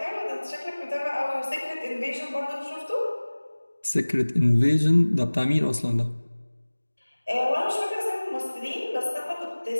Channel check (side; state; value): both; inverted; correlation -1.00